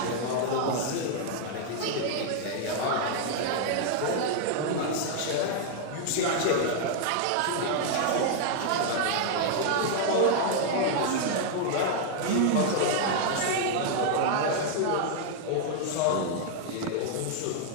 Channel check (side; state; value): both; different; correlation 0.00